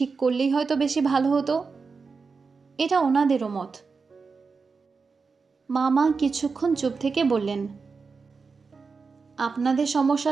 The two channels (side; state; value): left; quieter; 4.8 dB